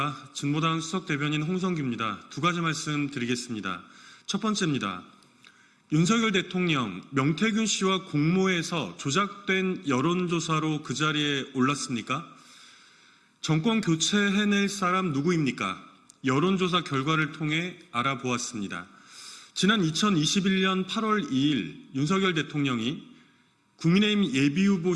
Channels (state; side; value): identical; both; correlation 1.00